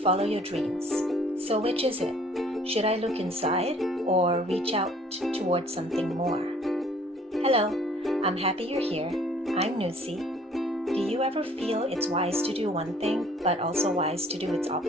follow your dreams. So which is it? Should I look inside or reach out towards something more? Hello, I'm happy you're here. I'm Nusi. Do you ever feel it's wise to do one thing, but also wise to do its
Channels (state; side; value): normal; both; correlation 0.56